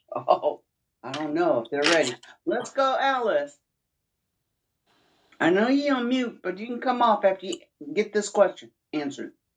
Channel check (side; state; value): both; identical; correlation 1.00